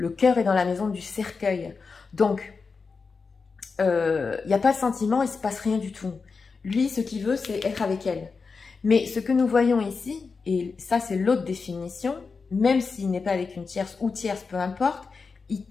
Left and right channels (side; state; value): right; quieter; 4.8 dB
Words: cœur est dans la maison du cercueil. Donc, il n'y a pas de sentiment, il ne se passe rien du tout. Lui, ce qu'il veut, c'est être avec elle. Mais ce que nous voyons ici, et ça c'est l'autre définition, même s'il n'est pas avec une tierce ou tierce, peu importe, il